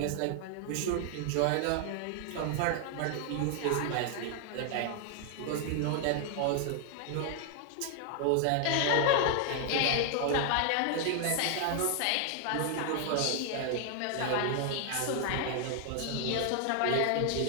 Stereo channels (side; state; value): both; different; correlation 0.00